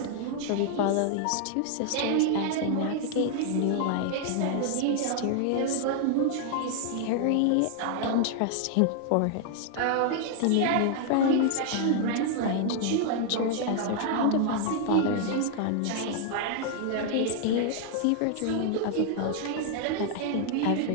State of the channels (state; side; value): different; both; correlation 0.00